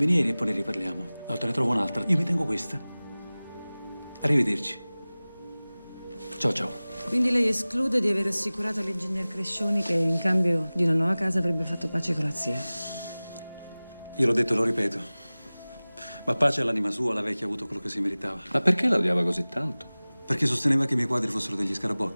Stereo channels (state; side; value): inverted; both; correlation -0.99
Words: e poi ne riparliamo. Allora te ne trovo un'altra. Io mi tengo questa. Arrivederci. Ciao, ciao. Quindi lei esclude di aver assicurato all'ingegner Crescioni che in cambio di una nuova casa avrebbe fatto pace con la zia? Io l'ho detto e lo ripeto. Ma pace all'anima sua, la vecchia ha avuto quello che si meritava. Ma perché la odiava così tanto? Perché sosteneva che i miei quadri fossero degli